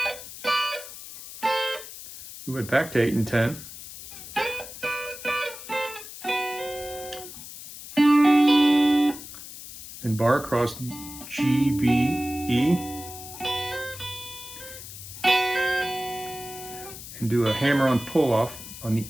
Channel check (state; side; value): noise; left; hiss, 13 dB below the sound